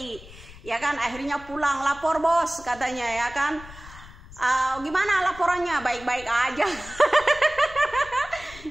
Ya kan, akhirnya pulang lapor bos katanya ya kan. Gimana laporannya? Baik-baik aja.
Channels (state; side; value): noise; left; rumble, 18 dB below the sound